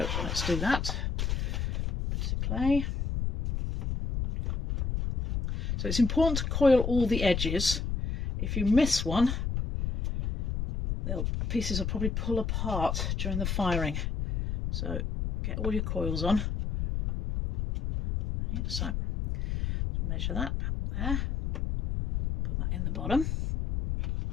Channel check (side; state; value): left; noise; rumble, 1 dB below the sound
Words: let's do that. Piece of clay. So it's important to coil all the edges. If you miss one, the pieces will probably pull apart during the firing. So get all your coils on. Okay, so measure that there.